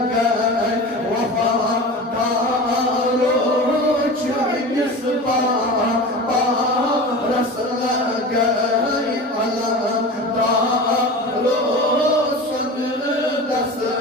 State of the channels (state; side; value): normal; both; correlation 0.32